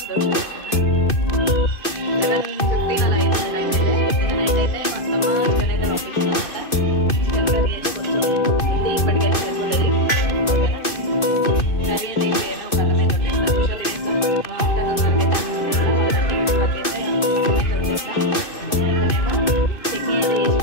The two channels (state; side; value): late; right; 2.6 ms